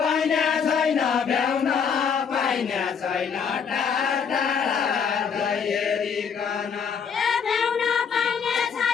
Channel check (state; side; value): quieter; right; 6.7 dB